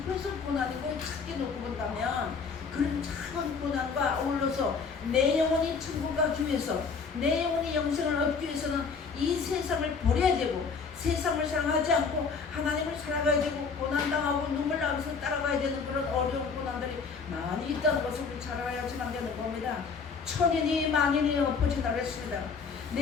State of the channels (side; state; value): right; quieter; 5.3 dB